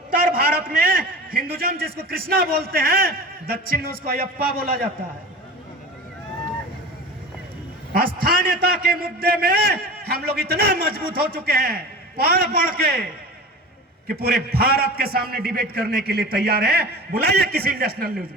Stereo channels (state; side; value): normal; both; correlation 0.34